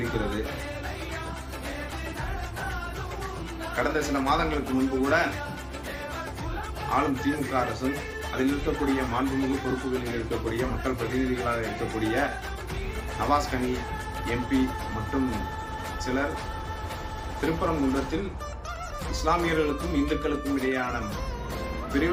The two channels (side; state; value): both; identical; correlation 1.00